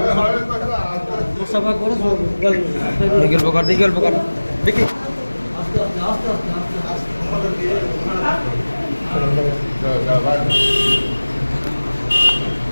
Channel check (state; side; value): inverted; both; correlation -1.00